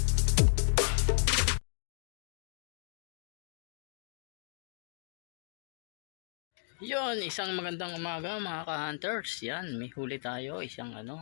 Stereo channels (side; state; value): right; silent; digital silence